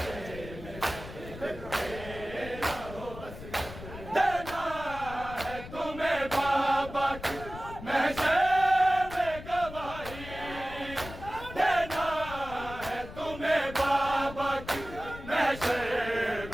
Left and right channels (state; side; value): noise; left; rumble, 13 dB below the sound